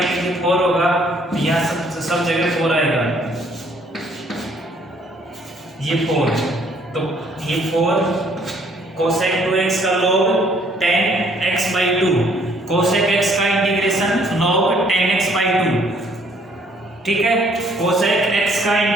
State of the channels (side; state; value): both; normal; correlation 0.63